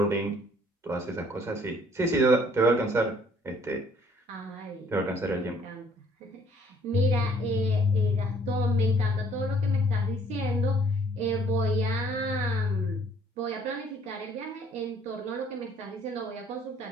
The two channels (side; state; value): both; normal; correlation 0.61